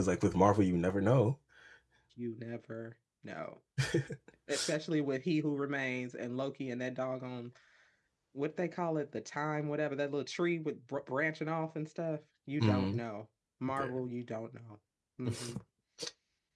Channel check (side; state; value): both; identical; correlation 1.00